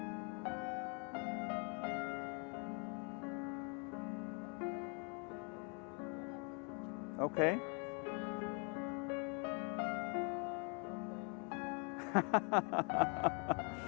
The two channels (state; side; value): quieter; right; 35.9 dB